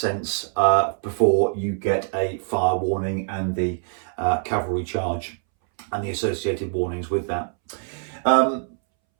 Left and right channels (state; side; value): silent; left; 63 dB below the other